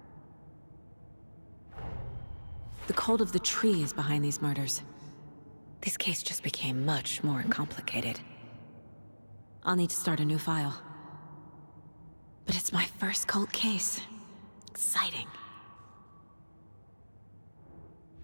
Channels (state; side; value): inverted; both; correlation -1.00